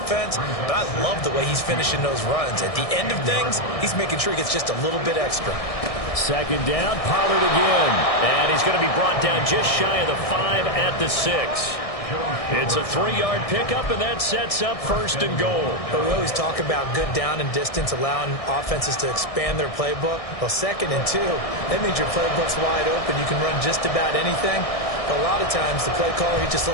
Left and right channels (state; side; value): late; right; 1.6 ms